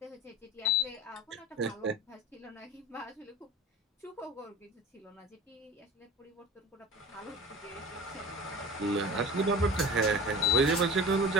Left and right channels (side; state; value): both; normal; correlation 0.35